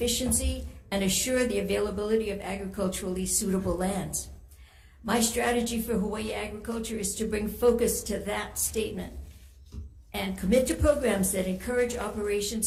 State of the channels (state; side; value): identical; both; correlation 1.00